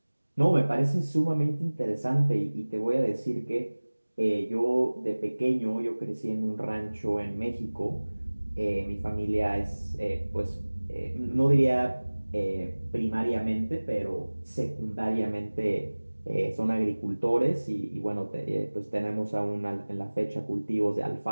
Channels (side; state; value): both; inverted; correlation -1.00